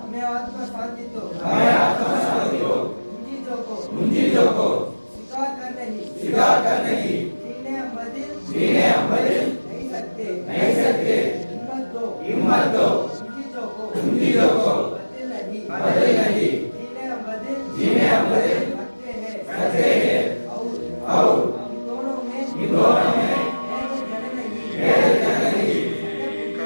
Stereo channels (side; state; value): both; inverted; correlation -1.00